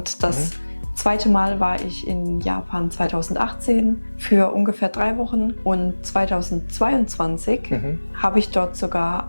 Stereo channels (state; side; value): inverted; both; correlation -1.00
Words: das zweite Mal war ich in Japan 2018 für ungefähr 3 Wochen. Und 2022 habe ich dort sogar